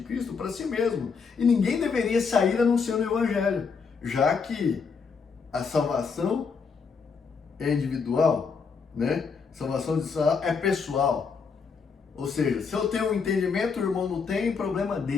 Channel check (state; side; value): quieter; right; 5.4 dB